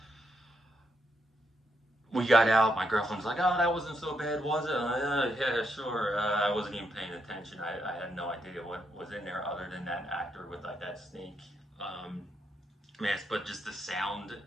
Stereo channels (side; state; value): both; normal; correlation 0.78